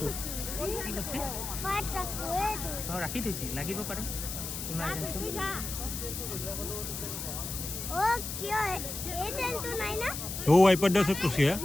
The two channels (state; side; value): noise; left; hiss, 6 dB below the sound